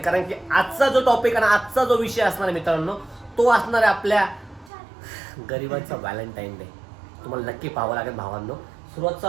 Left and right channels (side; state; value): left; drops out; at 4.7 s